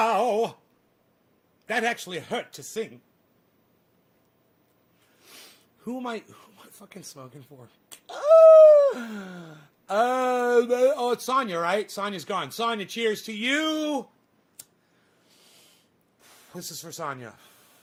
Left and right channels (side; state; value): both; identical; correlation 1.00